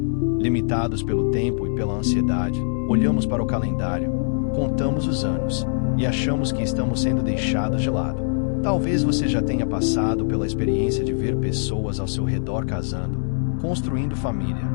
limitados pelo tempo e pela ansiedade, olhamos para o calendário, contamos os anos e achamos que estamos sendo deixados de lado. Talvez você já tenha passado pela experiência de ver pessoas ao seu redor casando, construindo família,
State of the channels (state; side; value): silent; right; 64 dB below the other